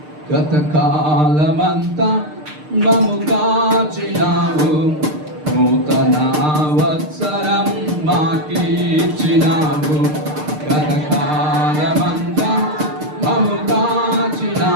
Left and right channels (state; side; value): late; left; 6.6 ms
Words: గత కాలమంతా మము కాచినావు నూతన వత్సరం మాకిచ్చినావు గత కాలమంతా మము